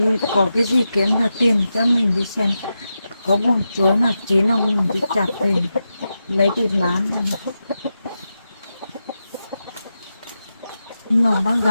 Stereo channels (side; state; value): both; inverted; correlation -0.89